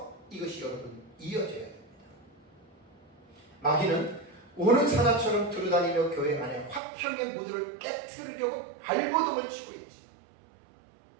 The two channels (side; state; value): left; drops out; at 6.8 s